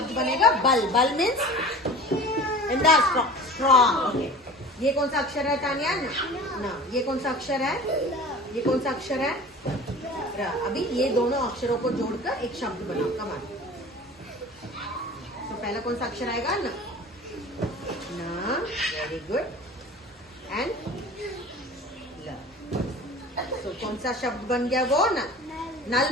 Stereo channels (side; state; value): both; normal; correlation 0.39